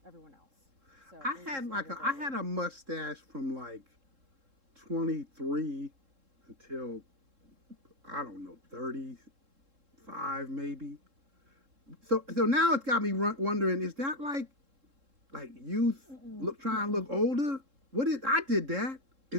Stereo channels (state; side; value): late; left; 3.7 ms